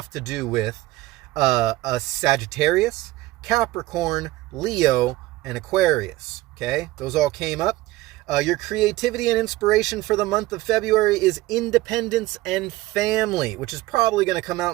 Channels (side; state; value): left; quieter; 18.0 dB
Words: to do with a Sagittarius, Capricorn, Leo, and Aquarius. Okay, those all came up. Your creativity and inspiration for the month of February is independence and family, which is probably going to come out